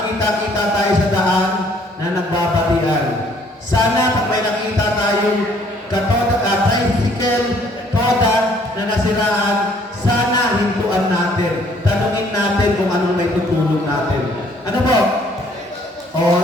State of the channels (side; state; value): both; normal; correlation 0.61